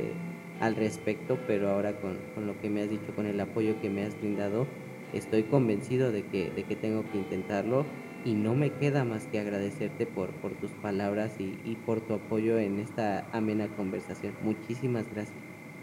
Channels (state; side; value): identical; both; correlation 1.00